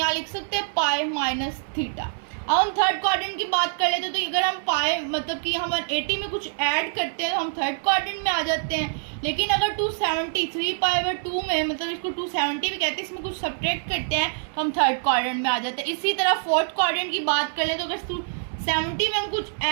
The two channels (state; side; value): silent; left; 62 dB below the other